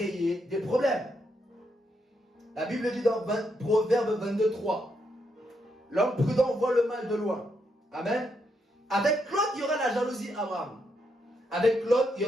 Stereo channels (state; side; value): normal; both; correlation 0.79